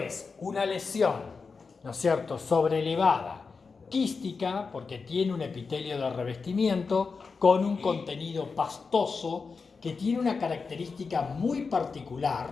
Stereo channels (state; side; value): quieter; right; 4.8 dB